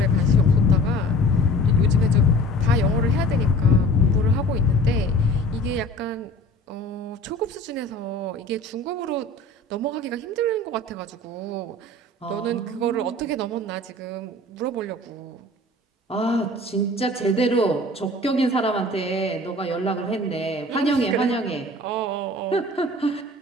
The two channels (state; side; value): normal; both; correlation 0.44